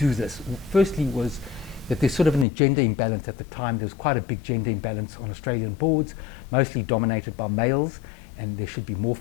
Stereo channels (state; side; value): drops out; right; at 2.5 s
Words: this. Firstly was that there's sort of an gender imbalance at the time. There was quite a big gender imbalance on Australian boards, mostly dominated by males, and there should be more